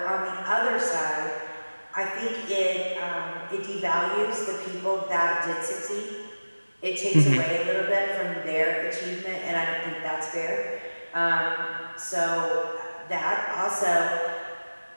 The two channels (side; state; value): both; inverted; correlation -1.00